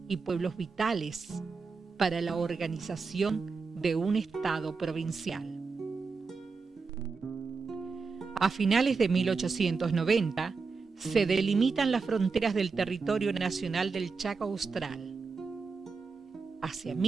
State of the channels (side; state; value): left; quieter; 4.7 dB